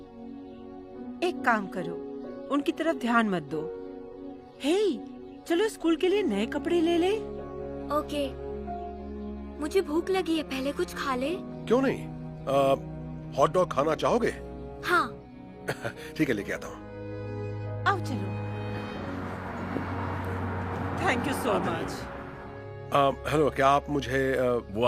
एक काम करो, उनकी तरफ ध्यान मत दो। हे, चलो स्कूल के लिए नए कपड़े ले ले। ओके। मुझे भूख लगी है, पहले कुछ खा ले। क्यों नहीं? हॉट डॉग खाना चाहोगे? हाँ। ठीक है, लेके आता हूँ। आओ चलो। Thank you so much. Hello, क्या आप मुझे वो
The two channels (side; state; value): both; identical; correlation 1.00